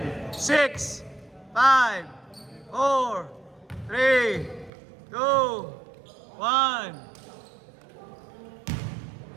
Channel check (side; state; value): left; drops out; at 4.7 s